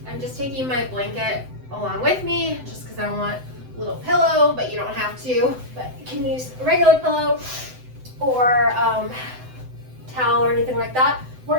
I'm just taking my blanket along with me, just because I want a little pillow, but you don't have to. But you can use a regular pillow or towel or anything like that. We're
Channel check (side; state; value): left; late; 7.9 ms